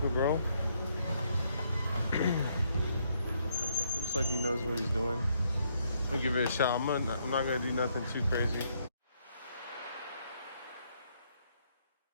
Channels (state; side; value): inverted; both; correlation -0.73